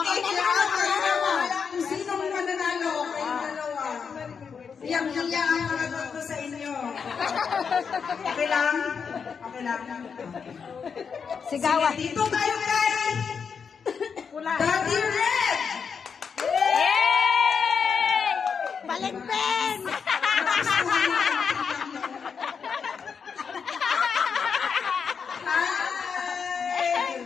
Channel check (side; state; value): right; quieter; 6.2 dB